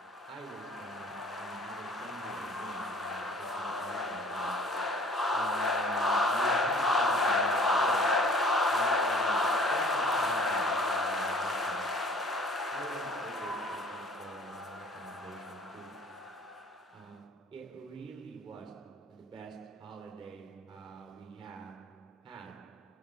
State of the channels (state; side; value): normal; both; correlation 0.51